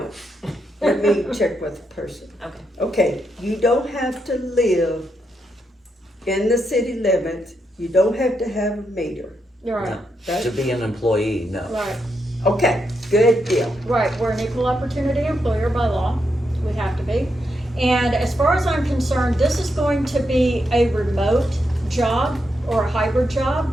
let me check with the person. Okay. Okay, you don't have to live in the city limits, you don't have to have a meter, You're right, right? To be an employee, no. right. Okay, good deal. Right, we're an equal opportunity employer by law, we have to be. And as far as I'm concerned, this is going to be a remote job or a hybrid job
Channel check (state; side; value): normal; both; correlation 0.82